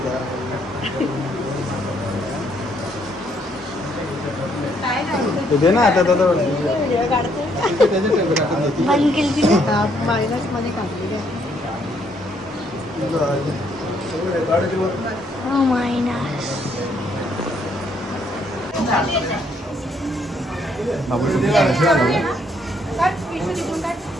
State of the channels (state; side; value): normal; both; correlation 0.70